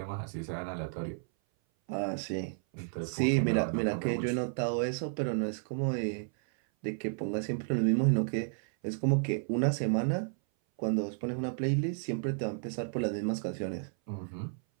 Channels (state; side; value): silent; left; 56 dB below the other